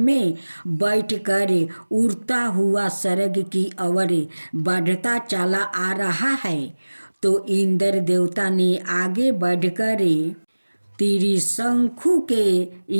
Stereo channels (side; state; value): both; inverted; correlation -1.00